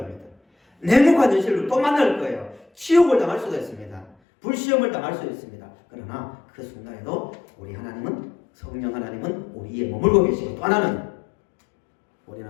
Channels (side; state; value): right; drops out; at 4.2 s